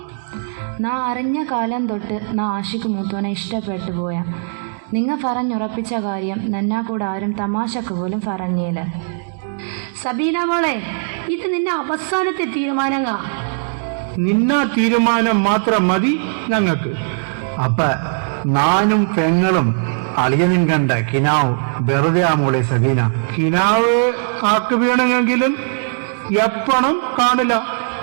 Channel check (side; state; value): left; silent; digital silence